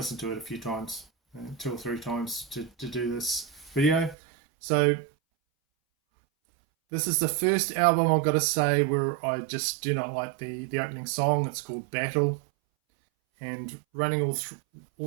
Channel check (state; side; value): drops out; left; at 4.2 s